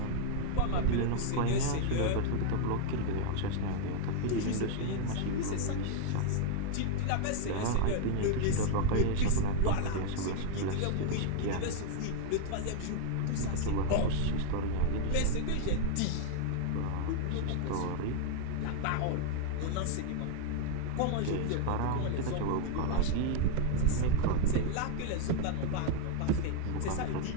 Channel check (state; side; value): different; both; correlation 0.00